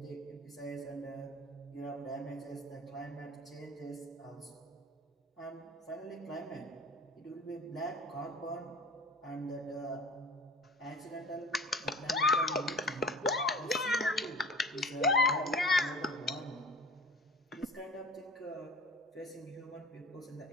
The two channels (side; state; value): both; normal; correlation 0.41